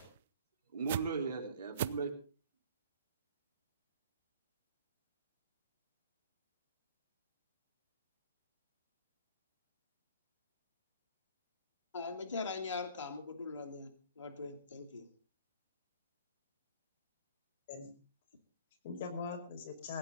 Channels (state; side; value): inverted; both; correlation -0.52